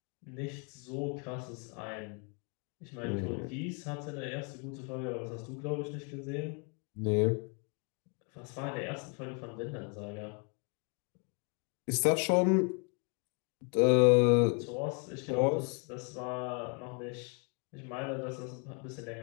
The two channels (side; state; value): right; quieter; 37.1 dB